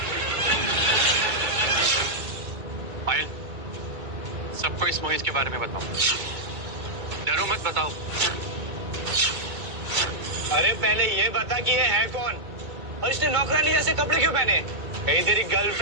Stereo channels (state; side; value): late; left; 2.2 ms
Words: पायल, सबको इस मोहित के बारे में बताओ, डरो मत, बताओ। अरे पहले ये बता कि ये है कौन और इसने नौकरानी जैसे कपड़े क्यों पहने? कहीं तेरी